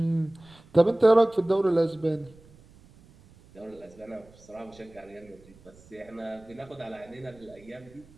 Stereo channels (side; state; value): right; noise; rumble, 25 dB below the sound